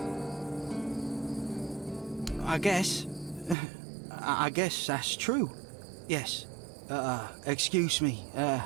I guess that's true. Yes. Excuse me.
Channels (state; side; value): drops out; left; at 3.6 s